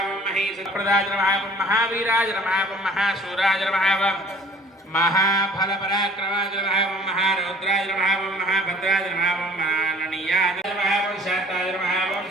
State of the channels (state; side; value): normal; both; correlation 0.52